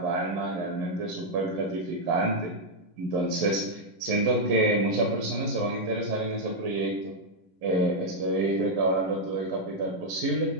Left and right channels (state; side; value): late; left; 11 ms